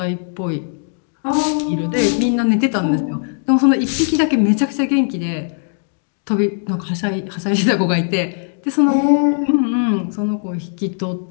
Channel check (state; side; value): silent; right; digital silence